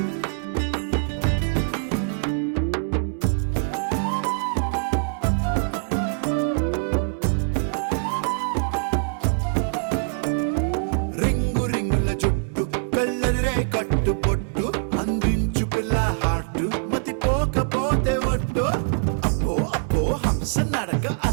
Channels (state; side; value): silent; left; 63 dB below the other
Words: కట్టు పొట్టు అందించు పిల్ల హార్ట్ మతి పోకపోతే ఒట్టు అప్పో అప్పో హంస నడక